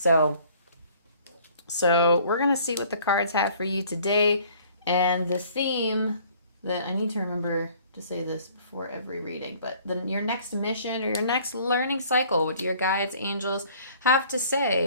we're going to see what the cards have for you today. And the theme that I need to remember to say this before every reading, but your next mission or your next learning cycle, what do your guides, angels have to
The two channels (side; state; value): both; inverted; correlation -0.55